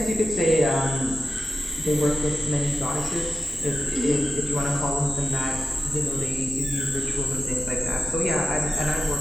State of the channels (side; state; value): both; normal; correlation 0.92